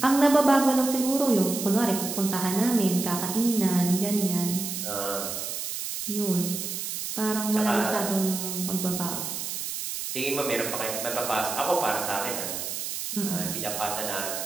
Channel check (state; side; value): noise; right; hiss, 5 dB below the sound